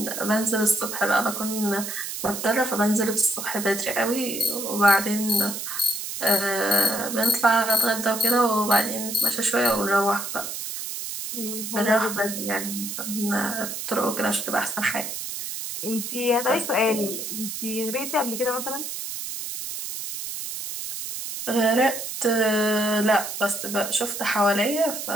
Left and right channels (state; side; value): noise; right; hiss, 6 dB below the sound